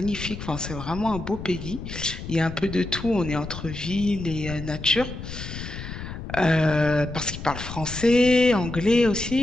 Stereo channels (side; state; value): left; noise; rumble, 9 dB below the sound